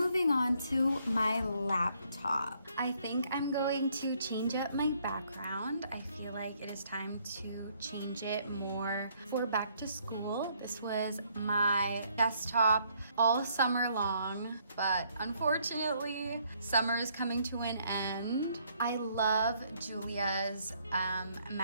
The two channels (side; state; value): both; inverted; correlation -0.68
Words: on to my laptop. I think I'm going to change up my background. I feel like it is time to change it more for back to school. This was my desktop all summer long, but unfortunately, summer is coming to an end. I love Julia's